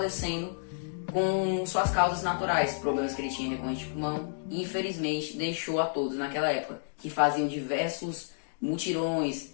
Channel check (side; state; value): right; silent; digital silence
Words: com suas causas naturais, problemas que ele tinha recorrente de pulmão, e infelizmente deixou a todos naquela época, que faziam diversos mutirões,